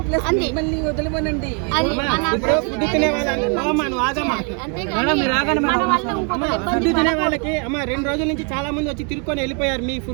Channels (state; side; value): quieter; left; 37.4 dB